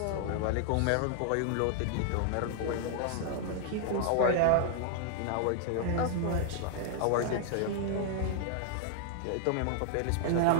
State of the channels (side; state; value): both; different; correlation 0.00